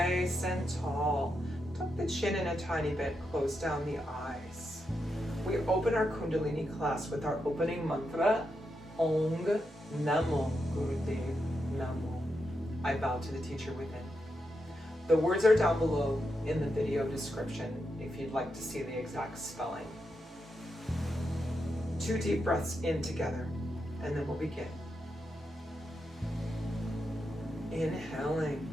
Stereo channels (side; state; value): both; normal; correlation 0.85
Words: and tall. tuck the chin in a tiny bit, close down the eyes. We open our Kundalini class with our opening mantra, Ong Namo Gurudev Namo. I bow to the teacher within. The words are down below in the video description if you'd like to see the exact spelling. 2 deep breaths in together, and then we'll begin. Inhaling